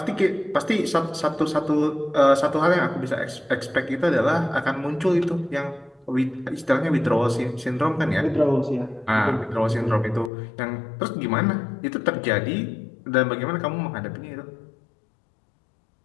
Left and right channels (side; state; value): right; drops out; at 10.3 s